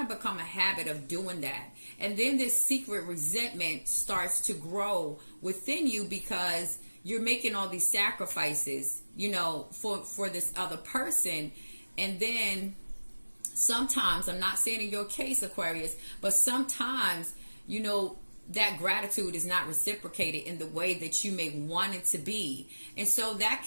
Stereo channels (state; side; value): inverted; both; correlation -1.00